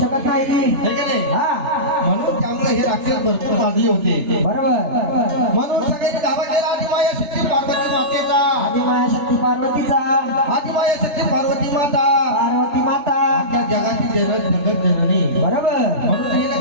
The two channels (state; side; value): late; left; 3.3 ms